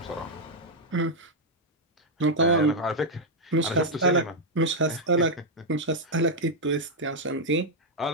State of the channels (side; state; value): both; normal; correlation -0.01